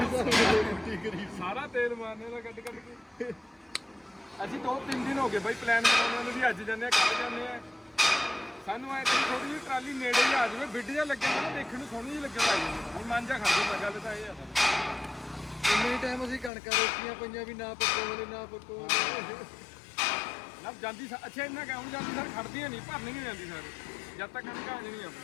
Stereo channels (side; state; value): right; drops out; at 16.5 s